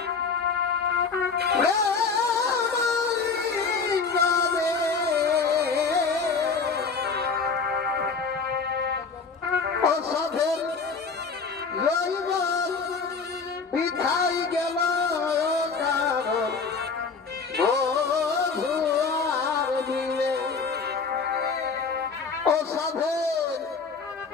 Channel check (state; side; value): quieter; right; 5.0 dB